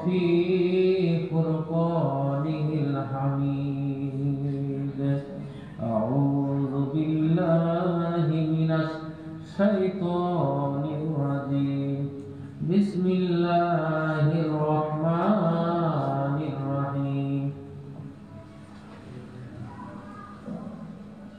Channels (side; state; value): both; identical; correlation 1.00